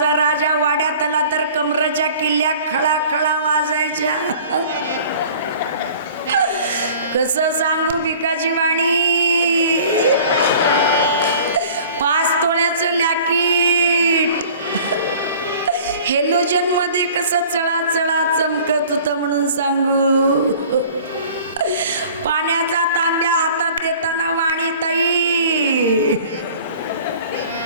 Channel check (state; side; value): inverted; both; correlation -0.47